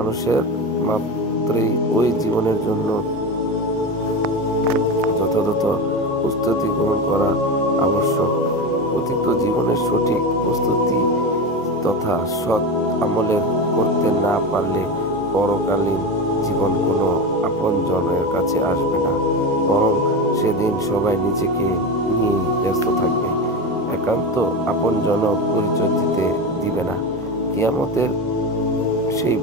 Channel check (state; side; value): normal; both; correlation 0.21